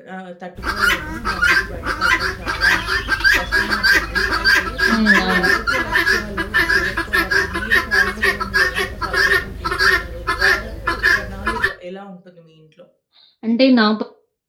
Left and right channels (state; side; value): identical; both; correlation 1.00